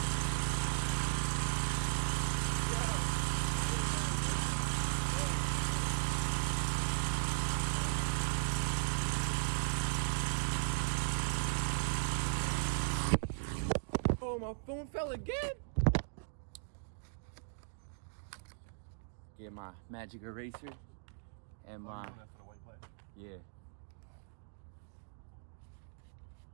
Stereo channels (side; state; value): left; silent; digital silence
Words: Oh, my phone fell again. Get my magic eraser and my yeah.